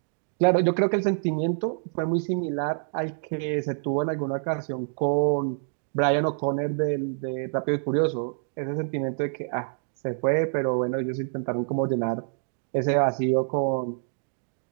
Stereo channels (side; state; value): left; silent; digital silence